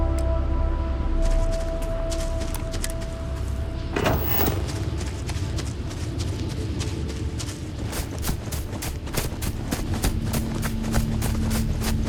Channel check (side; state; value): both; identical; correlation 1.00